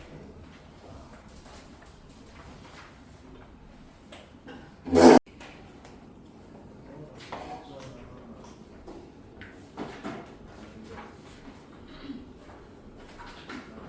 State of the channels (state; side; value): identical; both; correlation 1.00